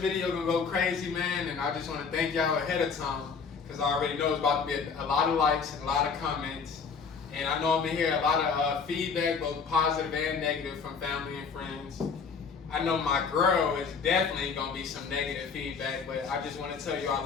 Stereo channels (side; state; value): right; quieter; 5.6 dB